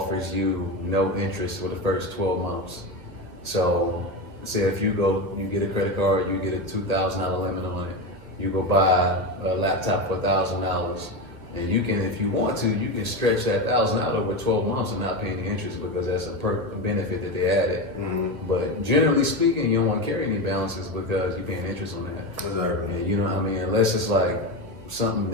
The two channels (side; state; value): left; late; 1.6 ms